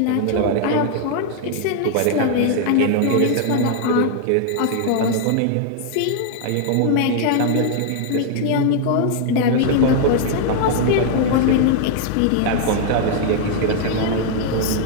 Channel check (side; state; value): both; different; correlation 0.00